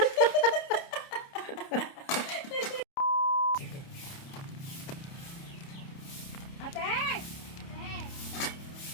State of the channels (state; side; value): late; right; 30 ms